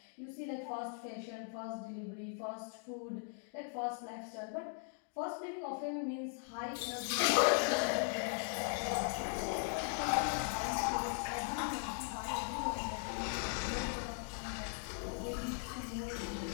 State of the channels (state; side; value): silent; right; 52 dB below the other